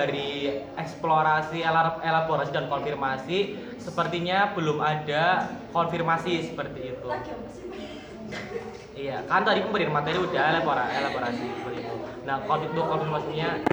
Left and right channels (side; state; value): both; identical; correlation 1.00